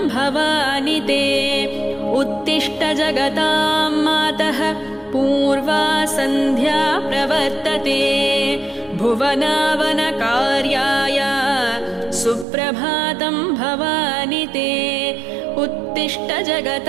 भवानि ते। उत्तिष्ठ जगतां मातः पूर्वा सन्ध्या प्रवर्तते भुवनावनकार्याय सुप्रभातं भवानि ते। उत्तिष्ठ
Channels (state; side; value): drops out; left; at 12.5 s